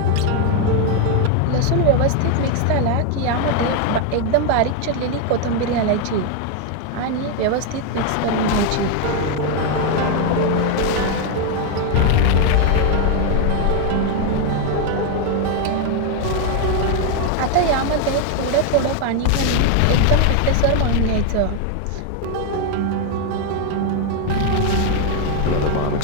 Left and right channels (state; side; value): different; both; correlation 0.01